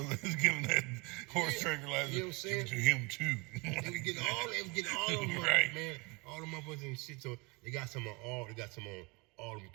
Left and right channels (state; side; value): quieter; left; 27.6 dB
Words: that was giving that horse tranquilizer. You know what I'm saying? To him too. They was getting all them motherfuckers, Right. man. All them motherfuckers and shit. So they got some on all them